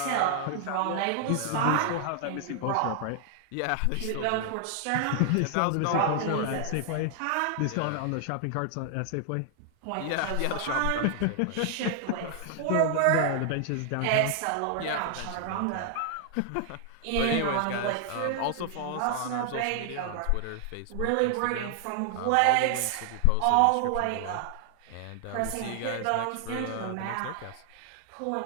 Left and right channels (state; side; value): different; both; correlation 0.00